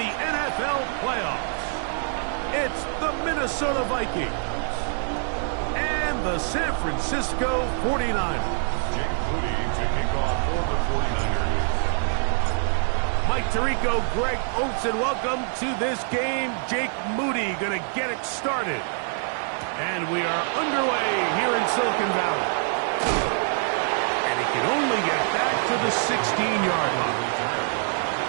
NFL playoffs. It's the Minnesota Vikings and the San Francisco 49ers. Jake Moody to kick off for the 49ers. Mike Tirico, Greg Oates, and welcome to this game. Jake Moody going to get it started. And we are underway here in Silicon Valley. And he can only get back to the 16-yard line.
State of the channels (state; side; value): silent; left; 58 dB below the other